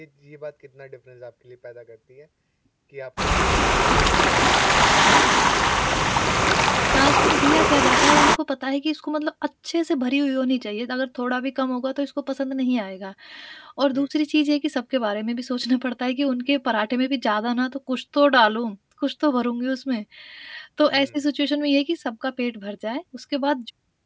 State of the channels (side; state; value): both; identical; correlation 1.00